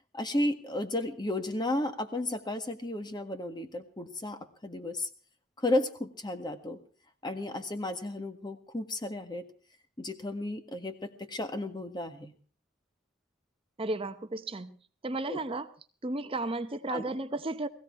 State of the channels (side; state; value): both; normal; correlation 0.61